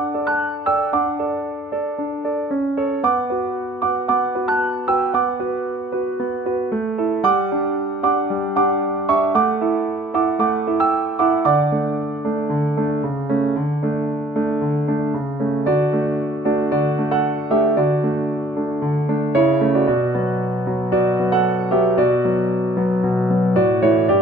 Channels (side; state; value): both; normal; correlation 0.59